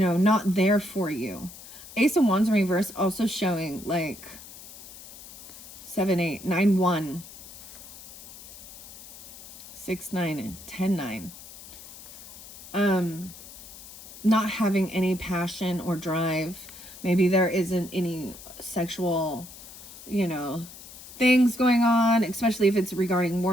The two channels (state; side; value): noise; left; hiss, 16 dB below the sound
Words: there for you. Ace of Wands in reverse also showing like 7, 8, 9, 1. 6, 9, 10, 9. Not having any passion or drive. Maybe there isn't any sexual, things going on, especially if it's regarding